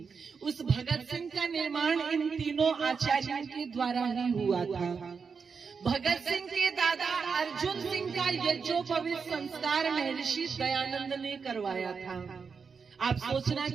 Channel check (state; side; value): quieter; left; 5.6 dB